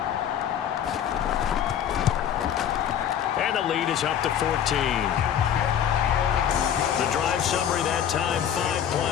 And the lead is up to 14. The drive summary that time, 5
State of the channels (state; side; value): quieter; right; 9.4 dB